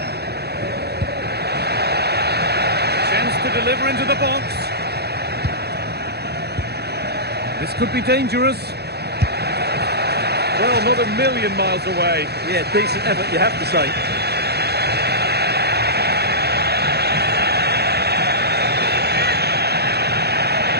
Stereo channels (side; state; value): left; late; 0.48 ms